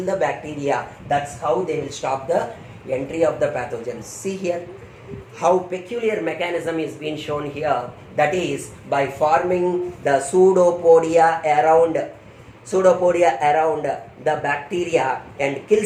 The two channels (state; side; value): identical; both; correlation 1.00